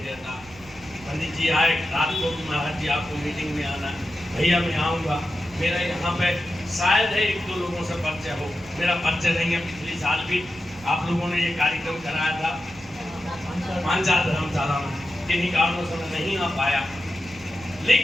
रहता। पंडित जी आए रात को कि महाराज जी आपको मीटिंग में आना, भैया मैं आऊँगा। मेरा यहाँ पे शायद है एक दो लोगों से परिचय हो, मेरा परिचय नहीं है। पिछले साल भी आप लोगों ने ये कार्यक्रम कराया था मानसा धर्मशाला में, किन्हीं कारणों से मैं नहीं आ पाया।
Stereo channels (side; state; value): right; noise; rumble, 22 dB below the sound